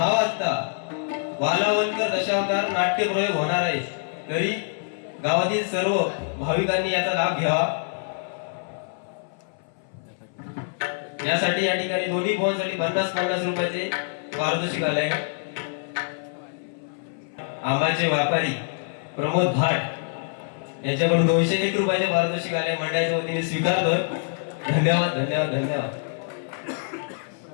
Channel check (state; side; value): silent; right; 58 dB below the other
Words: वाजता वालावलकर दशावतार नाट्य प्रयोग होणार आहे. तरी गावातील सर्व भाविकांनी याचा लाभ घ्यावा. यासाठी या ठिकाणी दोन्ही फोनसाठी 50-50 रुपयाचे पारितोषिक आले. आंबाचे व्यापारी प्रमोद भाट यांच्याकडून 201 रुपयाचे पारितोषिक आले. मंडळाच्या वतीने स्वीकारतोय. धन्यवाद धन्यवाद धन्यवाद.